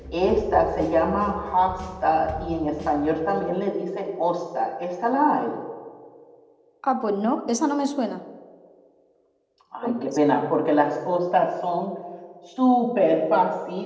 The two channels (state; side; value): identical; both; correlation 1.00